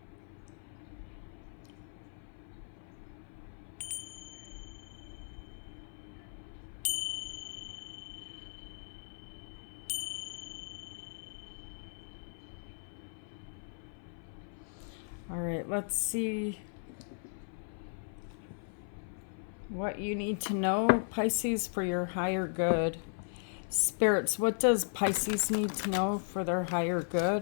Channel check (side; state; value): right; silent; 53 dB below the other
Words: all right, let's see what you need to know, Pisces, for your higher good. Spirits, what does Pisces need to know for their higher